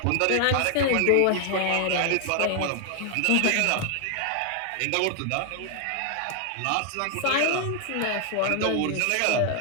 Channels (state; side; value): different; both; correlation 0.00